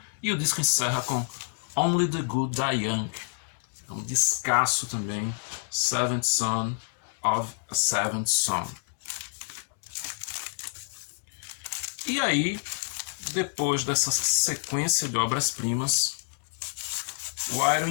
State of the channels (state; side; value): silent; right; 59 dB below the other